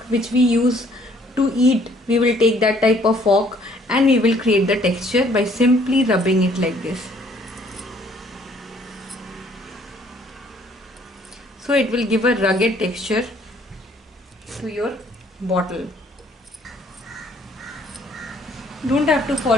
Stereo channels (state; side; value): normal; both; correlation 0.62